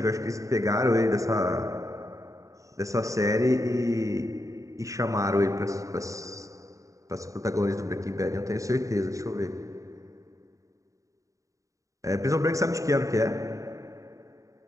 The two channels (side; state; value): left; late; 0.16 ms